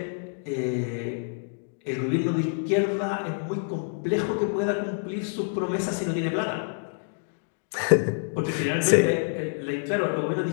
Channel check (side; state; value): right; silent; digital silence